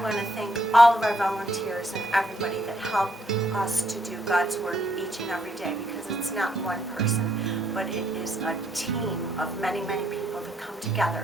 to thank all of our volunteers and everybody that help us to do God's work each and every day, because it's not one person, but it is a team of many, many people that come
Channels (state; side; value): normal; both; correlation 0.71